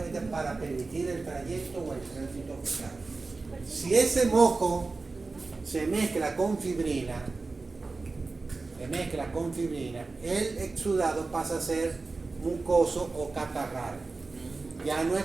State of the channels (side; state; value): left; quieter; 3.8 dB